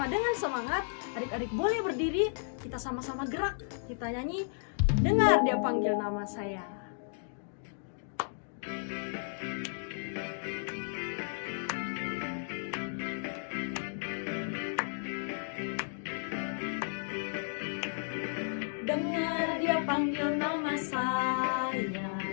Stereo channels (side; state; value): right; silent; digital silence